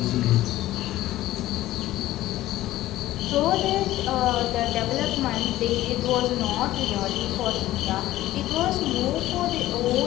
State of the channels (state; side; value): quieter; right; 15.3 dB